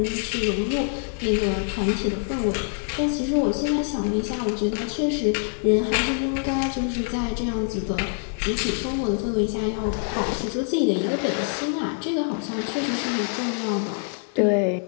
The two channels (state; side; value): silent; right; 56 dB below the other